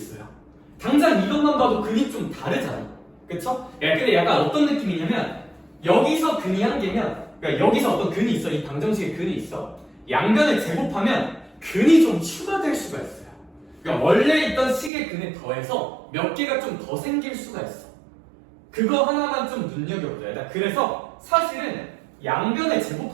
당장 이것만 봐도 근이 좀 다르잖아. 그쵸? 근데 약간 어떤 느낌이냐면, 여기서 근이 한 개면, 그러니까 여기서 어떤 근이 있어. 이 방정식에 근이 있어. 양변을 제곱하면 근이 좀 추가될 수가 있어요. 그러니까 원래 있던 식의 근에 더해서 몇 개가 좀 더 생길 수가 있어. 그거 하나만 좀 눈여겨보자. 그래서 사실은 양변을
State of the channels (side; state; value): left; drops out; at 14.9 s